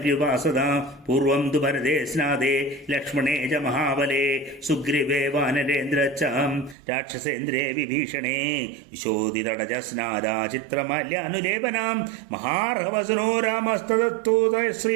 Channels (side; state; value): left; drops out; at 6.8 s